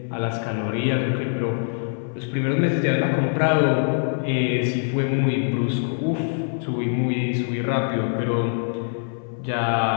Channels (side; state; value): right; silent; 58 dB below the other